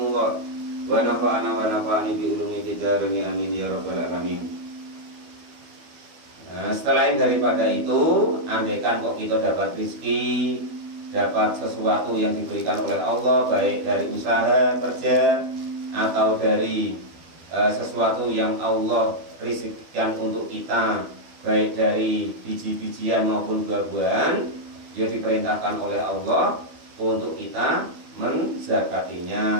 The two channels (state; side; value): late; left; 12 ms